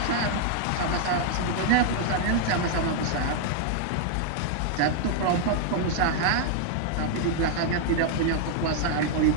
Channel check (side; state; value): both; different; correlation -0.01